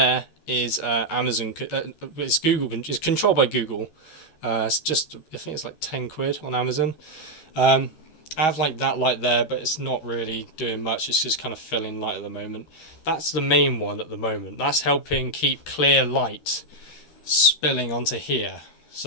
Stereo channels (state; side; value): late; right; 13 ms